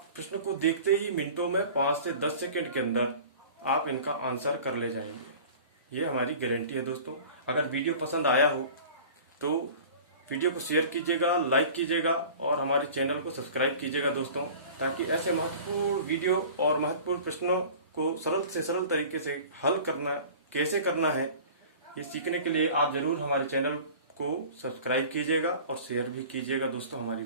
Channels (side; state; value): both; inverted; correlation -0.42